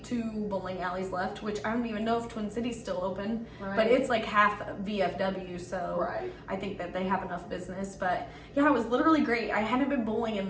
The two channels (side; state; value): both; identical; correlation 1.00